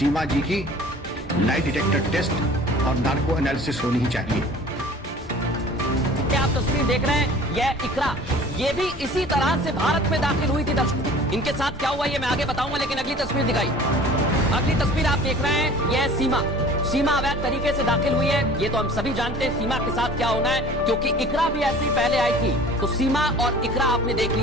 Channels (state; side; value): normal; both; correlation 0.46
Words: जी की लाई डिटेक्टर टेस्ट और नार्को एनालिसिस होनी ही चाहिए। आप तस्वीर देख रहे हैं, यह इकरा, ये भी इसी तरह से भारत में दाखिल हुई थी। दर्शकों, इनके साथ क्या हुआ ये मैं आगे बताऊंगा, लेकिन अगली तस्वीर दिखाई। अगली तस्वीर आप देख रहे हैं, यह सीमा अवैध तरीके से दाखिल हुई है। ये तो हम सभी जानते हैं सीमा के साथ क्या होना है, क्योंकि इकरा भी ऐसी पहले आई थी। तो सीमा और इकरा आपने देख